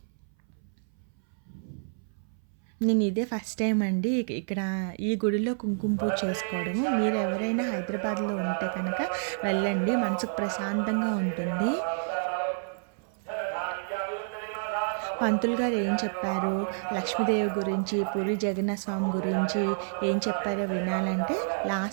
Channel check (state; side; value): silent; left; 58 dB below the other